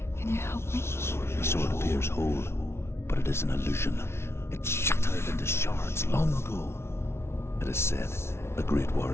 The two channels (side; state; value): right; late; 0.12 ms